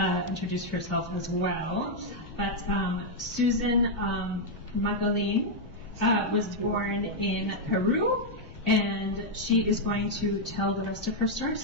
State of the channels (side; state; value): left; noise; rumble, 17 dB below the sound